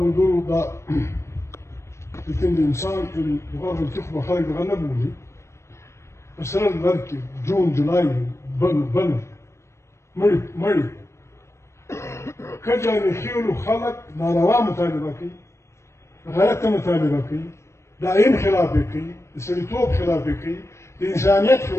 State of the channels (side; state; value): right; late; 0.13 ms